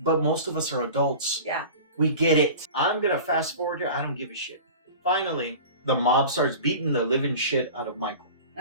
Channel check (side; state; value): both; inverted; correlation -0.37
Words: most of us are adults. Yeah. We get it. I'm going to fast forward here. I don't give a shit. Finally, the mob starts beating the living shit out of Michael.